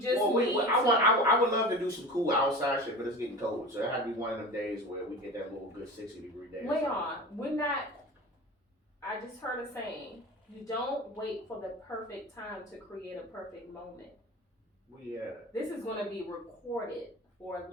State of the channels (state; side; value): normal; both; correlation 0.33